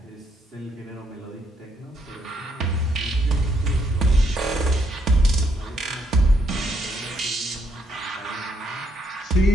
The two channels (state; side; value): normal; both; correlation 0.73